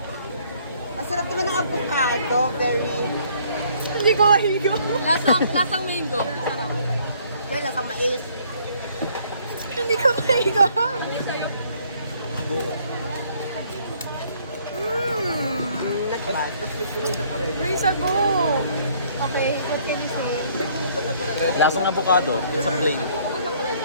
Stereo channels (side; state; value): both; inverted; correlation -0.62